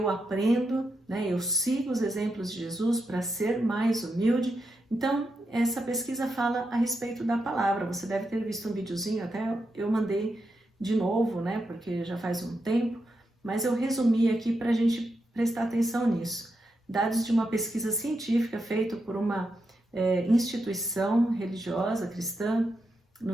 aprendo, né? Eu sigo os exemplos de Jesus para ser mais humilde. Então, essa pesquisa fala a respeito da palavra. Você deve ter visto um videozinho, até eu mandei de novo, né? Porque já faz um tempo, mas eu resumi aqui para a gente prestar atenção nisso. Dados de uma pesquisa científica feita por uma instituição religiosa cristã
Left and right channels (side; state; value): both; normal; correlation 0.85